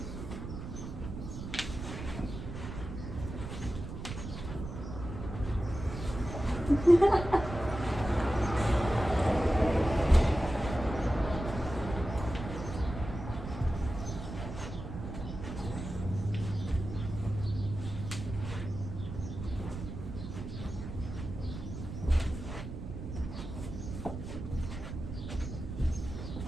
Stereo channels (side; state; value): right; noise; rumble, 8 dB below the sound